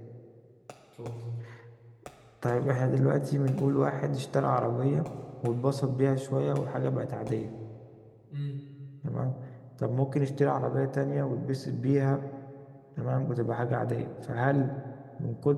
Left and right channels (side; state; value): both; identical; correlation 1.00